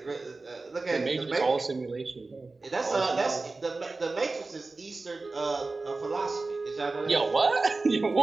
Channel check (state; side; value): quieter; left; 3.6 dB